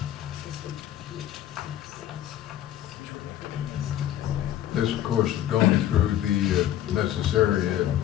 this, of course, has gone through the necessary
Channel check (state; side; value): quieter; right; 12.1 dB